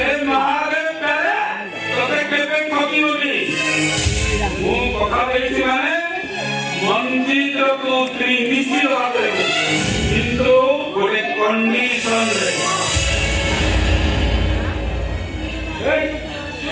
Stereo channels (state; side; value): identical; both; correlation 1.00